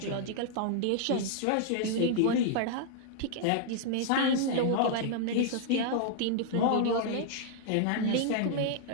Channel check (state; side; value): different; both; correlation -0.01